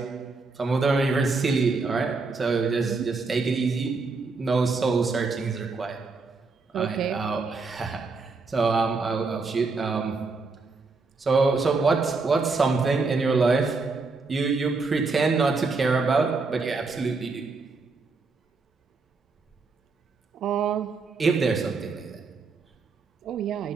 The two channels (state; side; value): quieter; left; 4.2 dB